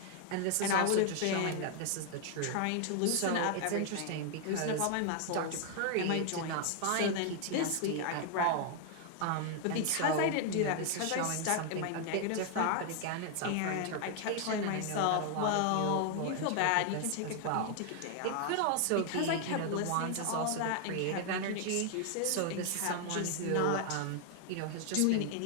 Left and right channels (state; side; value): different; both; correlation 0.00